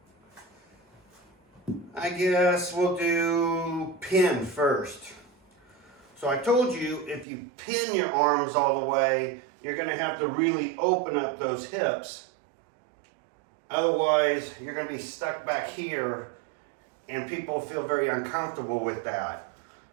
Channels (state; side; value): drops out; left; at 7.2 s